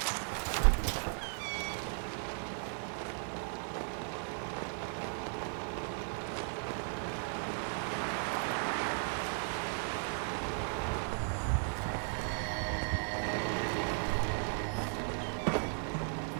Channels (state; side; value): silent; left; 54 dB below the other